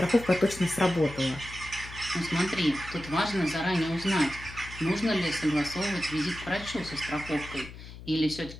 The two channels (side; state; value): left; noise; hum, 14 dB below the sound